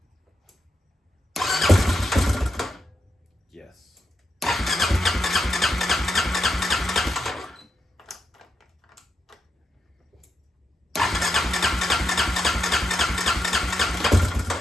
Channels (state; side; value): normal; both; correlation 0.84